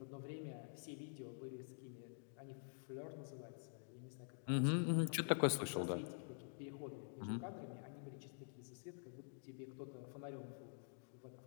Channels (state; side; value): silent; right; digital silence